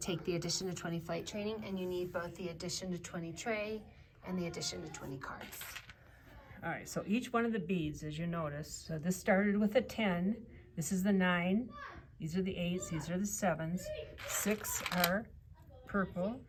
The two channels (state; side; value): identical; both; correlation 1.00